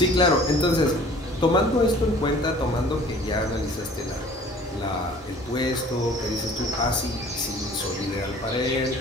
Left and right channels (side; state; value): both; normal; correlation 0.50